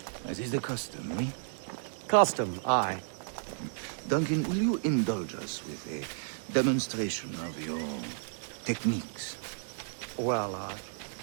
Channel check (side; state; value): left; silent; digital silence